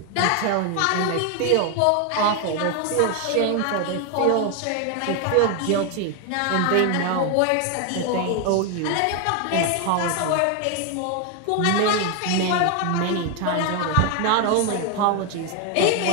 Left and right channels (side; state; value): both; different; correlation 0.01